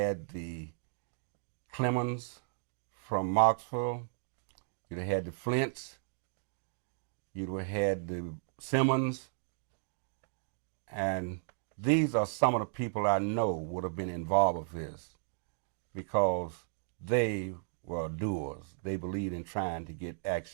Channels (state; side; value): silent; left; digital silence